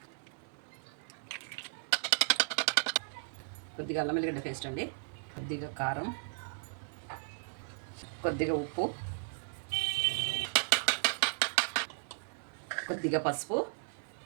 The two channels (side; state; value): left; silent; 54 dB below the other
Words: కొద్దిగా అల్లం వెల్లిగడ్డ పేస్ట్ అండి, కొద్దిగా కారం, కొద్దిగా ఉప్పు, కొద్దిగా పసుపు,